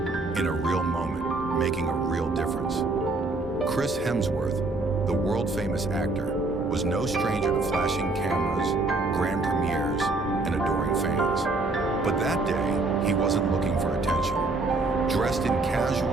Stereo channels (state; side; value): quieter; left; 3.2 dB